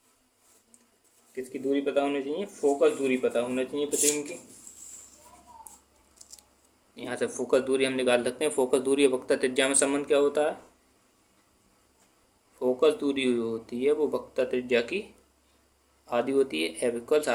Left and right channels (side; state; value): both; identical; correlation 1.00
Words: किसकी दूरी पता होनी चाहिए? फोकस दूरी पता होना चाहिए प्रतिबिंब की। यहाँ से फोकस दूरी हम निकाल सकते हैं। फोकस दूरी और वक्रता त्रिज्या में संबंध क्या होता है? फोकस दूरी होती है वो वक्रता त्रिज्या की आधी होती है, F =